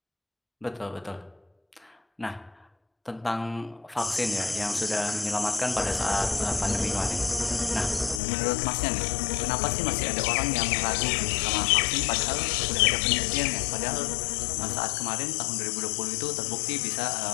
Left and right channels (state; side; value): drops out; right; at 8.2 s